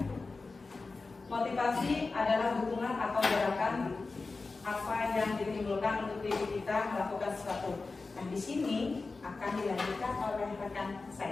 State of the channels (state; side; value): quieter; right; 3.9 dB